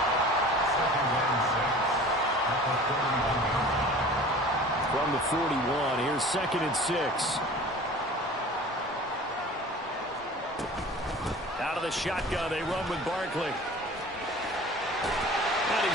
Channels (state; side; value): normal; both; correlation 0.43